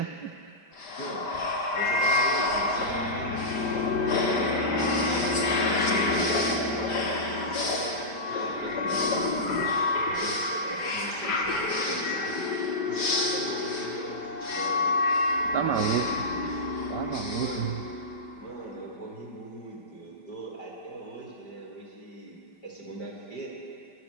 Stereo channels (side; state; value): right; late; 5.1 ms